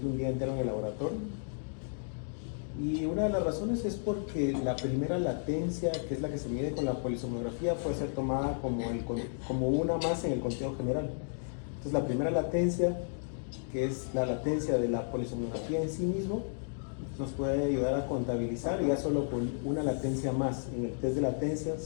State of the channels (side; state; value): right; silent; digital silence